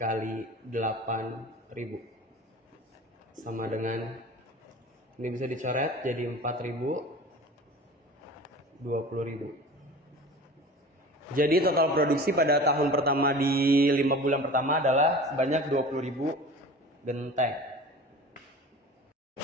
8.000 sama dengan, ini bisa dicoret jadi 4.000, 20.000. Jadi total produksi pada tahun pertama di 5 bulan pertama adalah sebanyak 20.000 genteng.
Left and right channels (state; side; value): normal; both; correlation 0.38